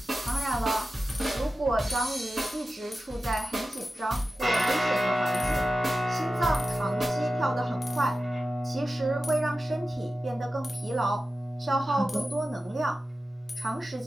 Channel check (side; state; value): both; normal; correlation 0.93